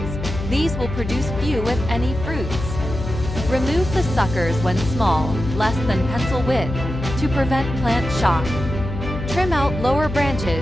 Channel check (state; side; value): noise; left; hum, 6 dB below the sound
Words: These will produce few if any fruits. Remove the suckers when small, less than pencil width, to prevent plant shock. Trim out lower